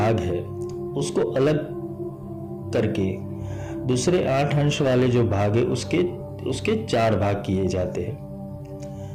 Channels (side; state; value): both; identical; correlation 1.00